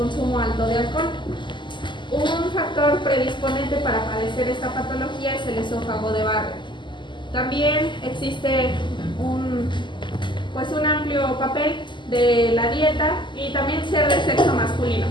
alto de alcohol. Un factor predisponente para padecer esta patología es el esófago de barro. También existe un amplio papel de la dieta y también ser del sexo masculino,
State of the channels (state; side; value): late; right; 0.23 ms